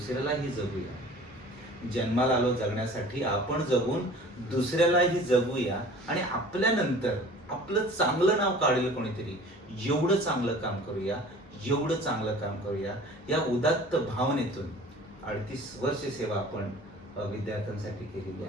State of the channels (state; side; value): normal; both; correlation 0.45